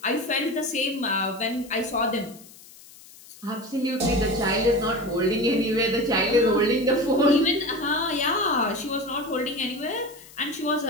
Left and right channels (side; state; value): left; noise; hiss, 21 dB below the sound